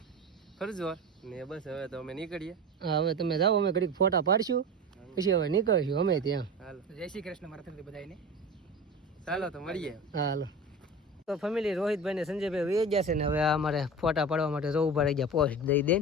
ફરજો ને બસ હવે તો અમે નીકળીએ. હા હવે તમે જાઓ અમે ઘડીક ફોટા પાડશું પછી હવે નીકળશું અમે ત્યાં. હાલો જય શ્રી કૃષ્ણ મારા તરફથી બધાને. ચાલો તો મળીએ. હા હાલો. તો ફેમિલી રોહિતભાઈ ને સંજયભાઈ વહી ગયા છે ને હવે અમારે ફોટા પાડવા માટે જો ઉભા રહી ગયા પોસ્ટ દઈ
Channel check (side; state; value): both; normal; correlation 0.30